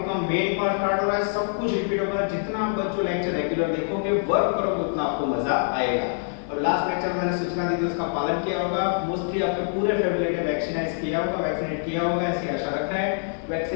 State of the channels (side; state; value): right; silent; 57 dB below the other